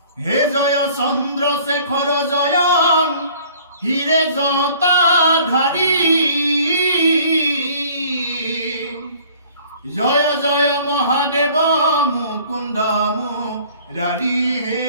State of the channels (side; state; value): both; inverted; correlation -0.52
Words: হে জয় চন্দ্ৰশেখৰ জয় হিৰে জটাধাৰী, জয় জয় মহাদেৱ মুকুন্দ মুৰাৰী, হে